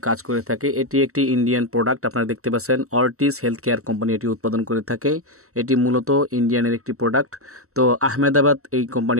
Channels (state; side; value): late; left; 0.63 ms